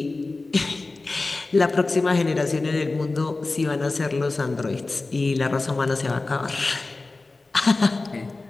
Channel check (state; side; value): quieter; right; 3.4 dB